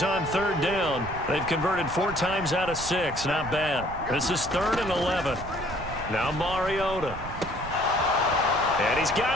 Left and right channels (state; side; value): noise; right; rumble, 11 dB below the sound